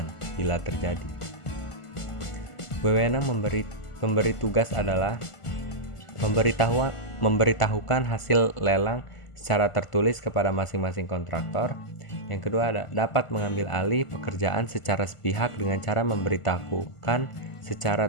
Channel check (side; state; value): right; late; 1.5 ms